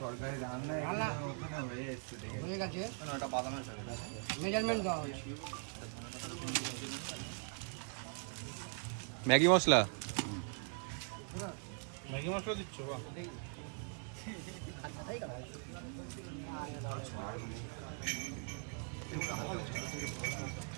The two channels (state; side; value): silent; left; 51 dB below the other